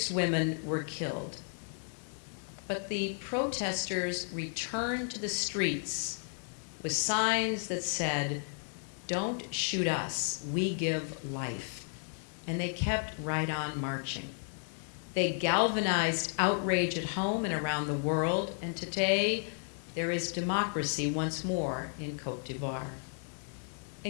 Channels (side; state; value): right; silent; 56 dB below the other